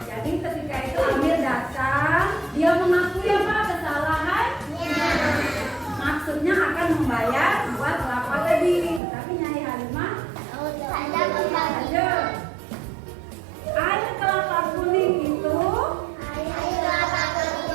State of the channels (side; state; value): left; drops out; at 9.0 s